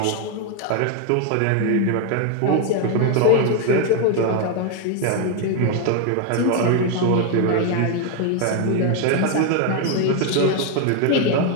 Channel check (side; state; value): both; different; correlation 0.01